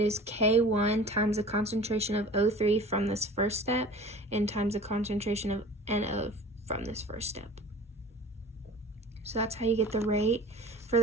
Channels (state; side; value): normal; both; correlation 0.42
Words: is K1 times the concentration of O3 from this first step and times the concentration of NO from this first step. So that's how you get the rate. For